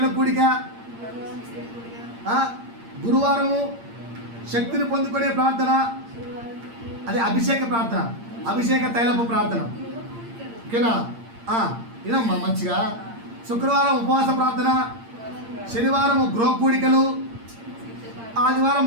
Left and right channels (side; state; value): left; late; 8.7 ms